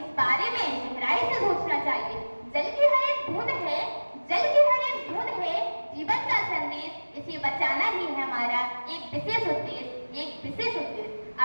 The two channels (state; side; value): inverted; both; correlation -1.00